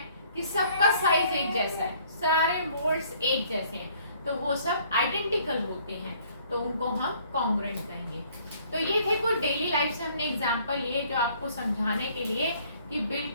कि सबका साइज एक जैसा है, सारे मोड्स एक जैसे हैं, तो वो सब आइडेंटिकल होते हैं, तो उनको हम कॉन्ग्रुएंट कहेंगे। तो ये थे कुछ डेली लाइफ से हमने एग्जांपल लिए जो आपको समझाने के लिए कि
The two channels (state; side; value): inverted; both; correlation -0.60